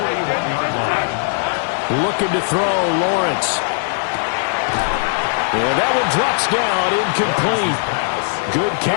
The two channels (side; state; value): right; silent; 57 dB below the other